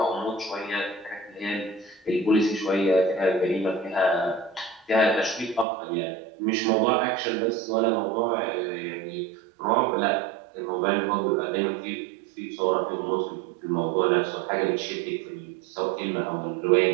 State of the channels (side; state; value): left; drops out; at 5.7 s